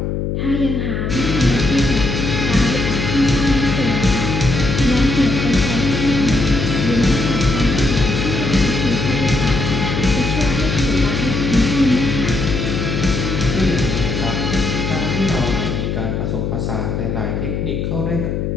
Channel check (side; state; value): left; noise; hum, 2 dB below the sound